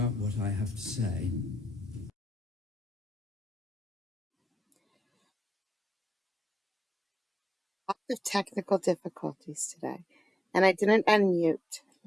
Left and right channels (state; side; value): normal; both; correlation 0.89